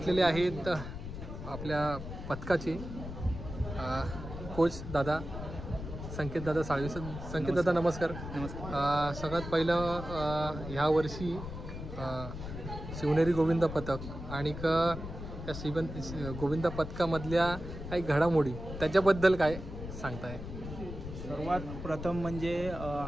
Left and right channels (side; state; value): left; noise; rumble, 9 dB below the sound